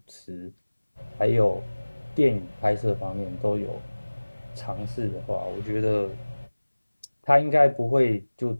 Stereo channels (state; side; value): inverted; both; correlation -1.00